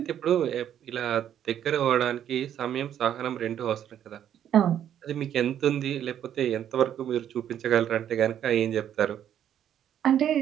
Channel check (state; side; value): quieter; left; 10.1 dB